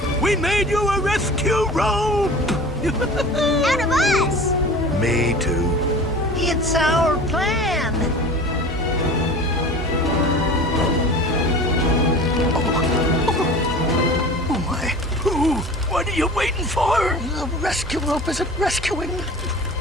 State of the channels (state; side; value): normal; both; correlation 0.38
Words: We made you a rescue rope. Out of us! Me too. It's our plan. Oh, my. Ooh, what are you waiting for? The rescue rope isn't rescuing.